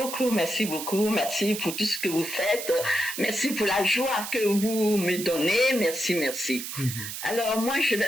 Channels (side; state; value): right; noise; hiss, 7 dB below the sound